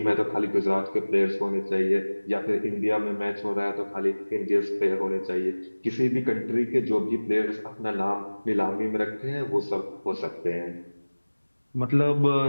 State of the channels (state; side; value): inverted; both; correlation -1.00